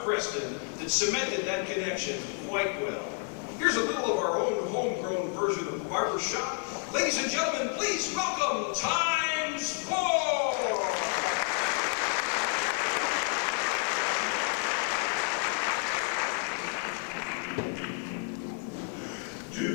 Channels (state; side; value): quieter; right; 38.2 dB